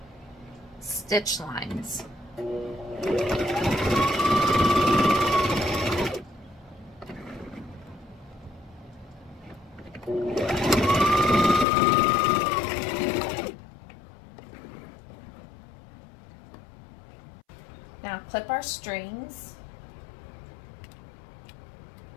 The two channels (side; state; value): right; drops out; at 11.7 s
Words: stitch lines. Now clip our strings.